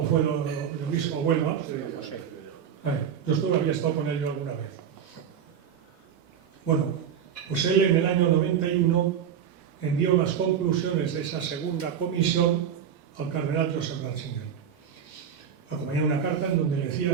fue el obispo de Huelva. José. Yo había estado con él yo alguna vez. Bueno, pues él en el año 91 envió las conclusiones de esa segunda comisión al cardenal Joseph Ratzinger. Acompañaba una carta en donde le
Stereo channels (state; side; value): quieter; left; 8.3 dB